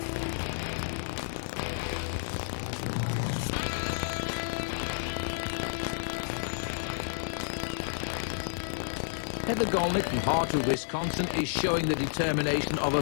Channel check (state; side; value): silent; right; digital silence